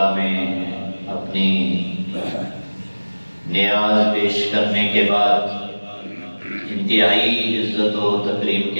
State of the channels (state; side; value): inverted; both; correlation -1.00